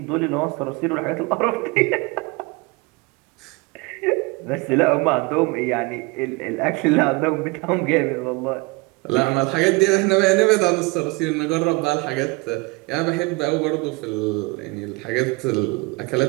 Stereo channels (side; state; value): left; quieter; 26.1 dB